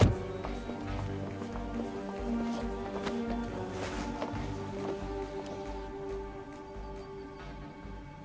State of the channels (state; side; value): identical; both; correlation 1.00